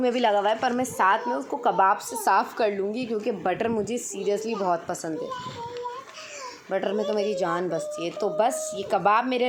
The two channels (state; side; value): identical; both; correlation 1.00